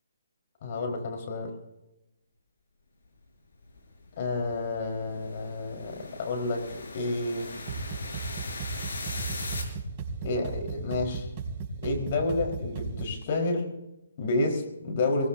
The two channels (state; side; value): inverted; both; correlation -0.63